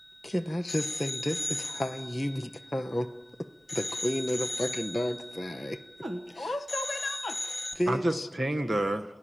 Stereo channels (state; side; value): normal; both; correlation 0.96